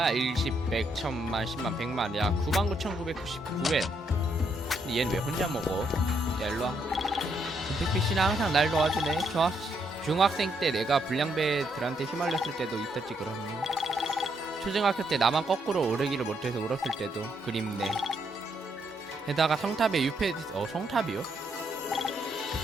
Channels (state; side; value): normal; both; correlation 0.75